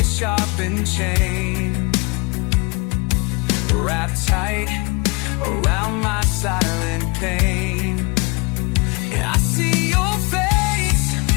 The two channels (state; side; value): quieter; right; 28.7 dB